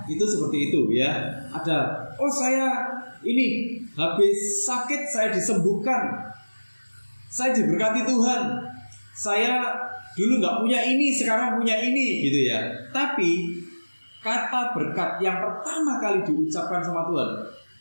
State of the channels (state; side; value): inverted; both; correlation -1.00